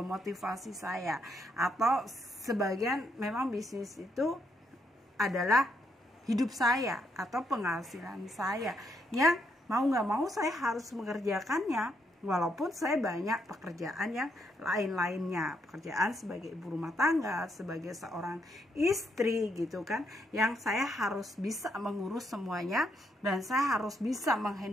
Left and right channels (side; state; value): both; normal; correlation 0.76